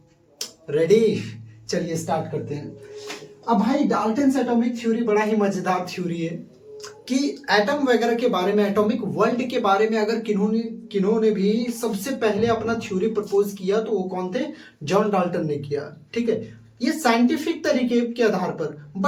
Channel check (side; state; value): both; identical; correlation 1.00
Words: रेडी। चलिए स्टार्ट करते हैं। अब भाई डाल्टन्स एटॉमिक थ्योरी बड़ा ही मजेदार थ्योरी है कि एटम वगैरह के बारे में, एटॉमिक वर्ल्ड के बारे में अगर किन्होंने भी सबसे पहले अपना थ्योरी प्रपोज किया तो वो कौन थे? जॉन डाल्टन ने किया। ठीक है, ये साइंटिफिक तरीके के आधार पर।